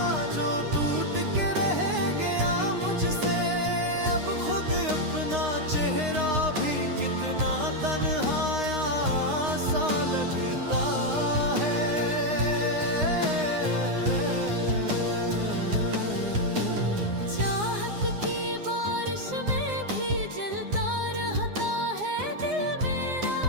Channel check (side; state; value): left; late; 9.7 ms